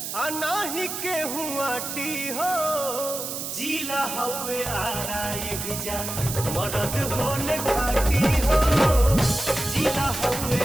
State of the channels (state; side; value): noise; right; hiss, 5 dB below the sound